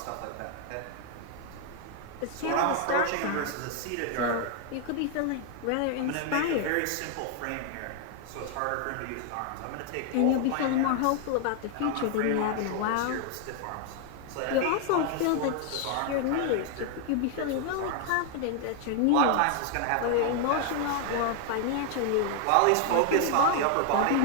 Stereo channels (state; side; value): different; both; correlation 0.00